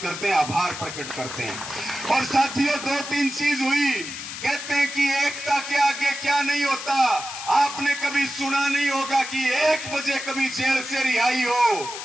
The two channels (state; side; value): noise; left; hiss, 9 dB below the sound